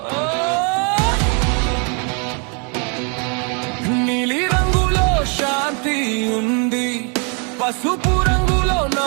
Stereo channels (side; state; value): left; quieter; 36.2 dB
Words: నీలి రంగులో శాంతి ఉంది, పసుపు రంగులో